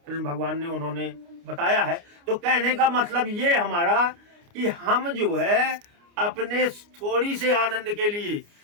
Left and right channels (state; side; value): late; left; 29 ms